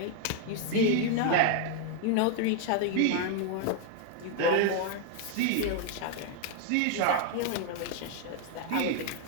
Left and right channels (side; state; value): both; different; correlation 0.00